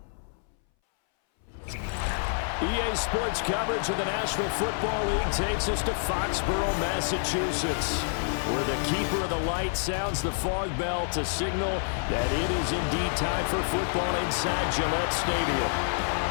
EA Sports coverage of the National Football League takes us to Foxborough, Massachusetts, where the keeper of the light sounds the fog bell to signal that it is indeed time for football inside Gillette Stadium.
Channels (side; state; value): right; silent; 59 dB below the other